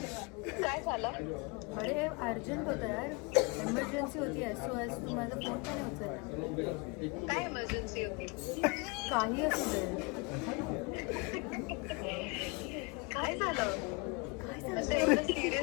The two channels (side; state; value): right; quieter; 29.0 dB